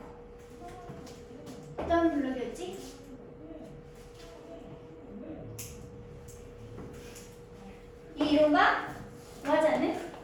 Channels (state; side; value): identical; both; correlation 1.00